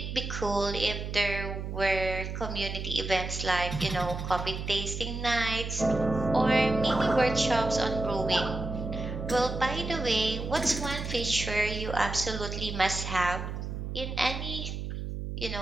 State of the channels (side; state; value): right; noise; hum, 5 dB below the sound